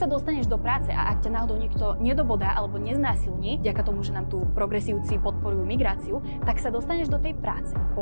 dostaneš do práce a ak ťa náhodou niekto nedobodá alebo neznásilní, vďaka tomu, že nám tu progresívci podporujú migráciu, tak sa dostaneš do tej práce.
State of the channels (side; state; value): both; inverted; correlation -1.00